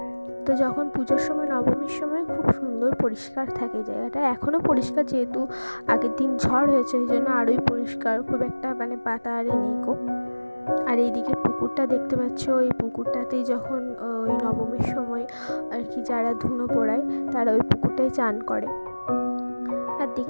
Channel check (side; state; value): both; inverted; correlation -1.00